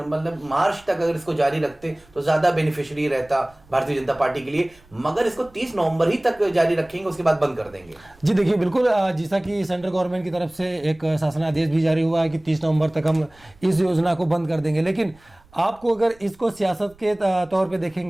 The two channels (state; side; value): noise; right; rumble, 28 dB below the sound